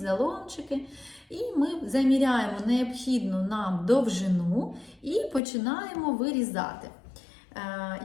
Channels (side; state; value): right; drops out; at 5.4 s